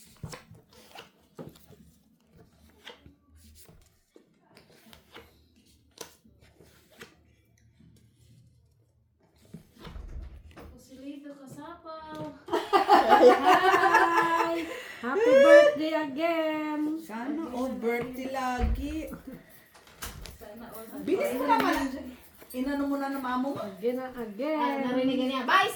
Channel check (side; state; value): both; identical; correlation 1.00